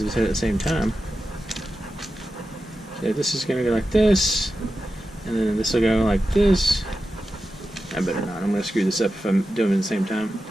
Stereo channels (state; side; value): normal; both; correlation 0.91